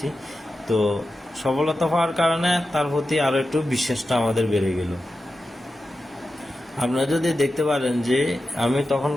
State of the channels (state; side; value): normal; both; correlation 0.92